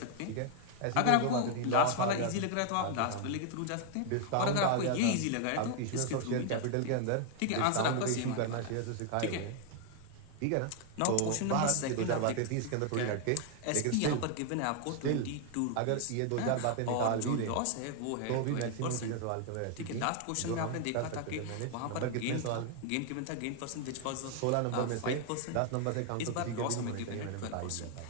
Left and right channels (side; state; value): both; different; correlation 0.00